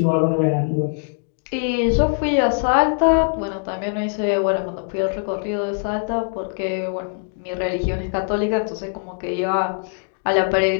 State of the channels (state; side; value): silent; right; 60 dB below the other